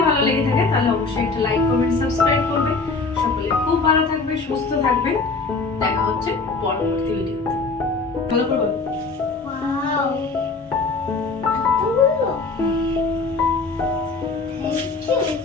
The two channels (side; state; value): right; quieter; 4.0 dB